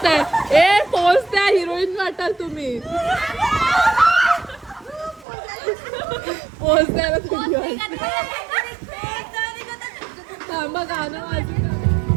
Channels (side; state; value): left; drops out; at 5.2 s